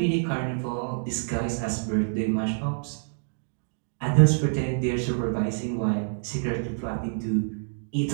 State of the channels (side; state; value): left; silent; digital silence